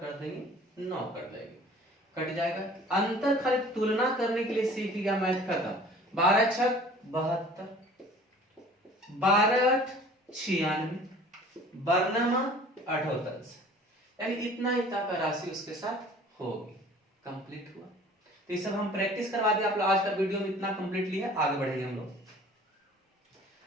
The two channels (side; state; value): both; normal; correlation 0.48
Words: देंगे 9 कर देंगे, कट जाएगा। अंतर खाली तुलना करने के लिए सीख गया, मैथ खत्म। 12 6 72, 12 8 96, वर्णमा 78, यानी इतना का राशि उसके साथ होगी। कंप्लीट हुआ। तो ये सब हम प्रैक्टिस करवा दिए आप लोग। आज का वीडियो में इतना कंप्लीटली है, आगे बढ़ेंगे हम लोग।